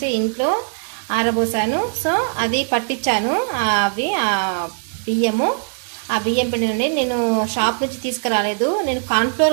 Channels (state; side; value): silent; left; digital silence